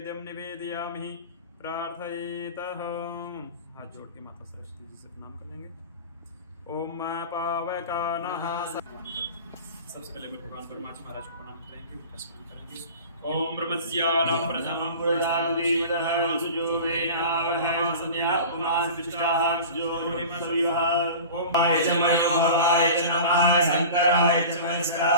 निवेदयामि। प्रार्थयेतः हाथ जोड़ के माता सरस्वती जी से प्रणाम कर लेंगे। ओम पावकानः सबसे पहले भगवान परमात्मा महाराज को प्रणाम करेंगे, उनका स्मरण करेंगे। ओम ब्रह्मस्यानं प्रथमं पुरुषादिदः सुजोवेनावह संध्याकुमारसिष्टाः सुजोरिमसुयः। ओम आय च मनोहराय च नमः शंकराय च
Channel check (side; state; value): both; inverted; correlation -0.37